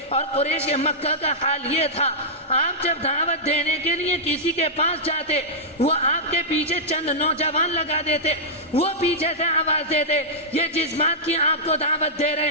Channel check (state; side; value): normal; both; correlation -0.10